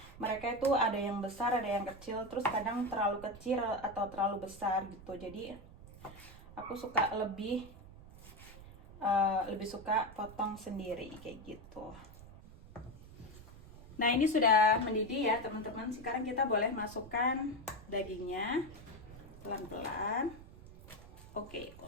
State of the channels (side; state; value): right; noise; rumble, 18 dB below the sound